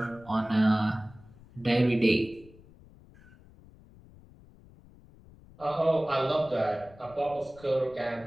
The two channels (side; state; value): left; noise; rumble, 24 dB below the sound